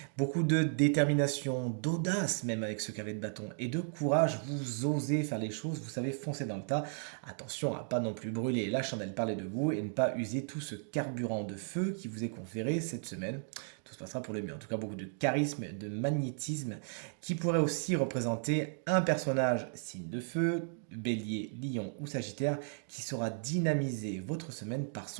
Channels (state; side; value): silent; left; digital silence